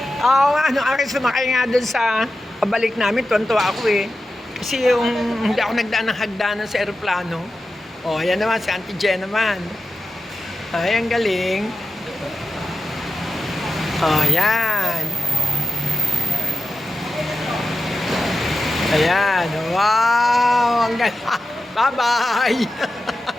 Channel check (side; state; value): both; normal; correlation 0.91